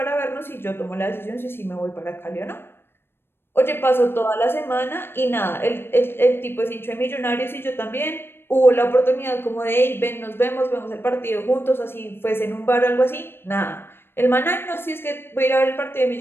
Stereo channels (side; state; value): right; late; 0.11 ms